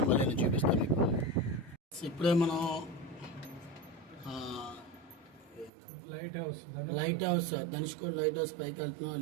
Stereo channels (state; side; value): drops out; left; at 5.7 s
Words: మళ్ళీ నేను చూపిస్తాను మీకు. ఇప్పుడే మనం light house Dhanushkodi light house పైకి వెళ్తున్నాం.